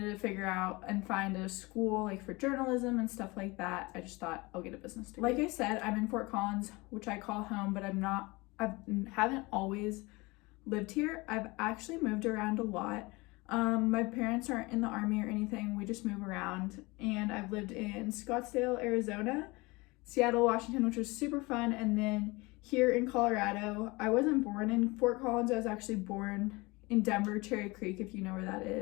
to figure out and find a school like for journalism and stuff like that. I just thought I'll get a business degree. Like I said, I'm in Fort Collins, which I call home, but I haven't always lived here. I've actually moved around a lot. My parents aren't in the Army or anything. We just move around, and I've lived in Scottsdale, Arizona, Seattle, Washington, which was super fun, and then here in Colorado. I wasn't born in Fort Collins. I was actually born in Denver, Cherry Creek, if you know where that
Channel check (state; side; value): quieter; right; 24.1 dB